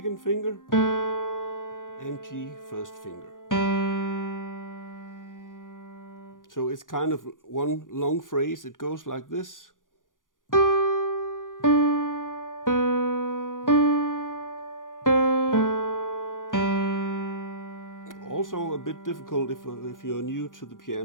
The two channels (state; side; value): late; right; 0.89 ms